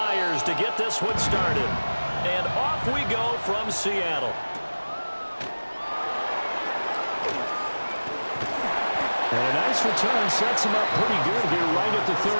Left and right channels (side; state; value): both; inverted; correlation -1.00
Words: to get this one started. And off we go from Seattle. And a nice return sets him up pretty good here right at the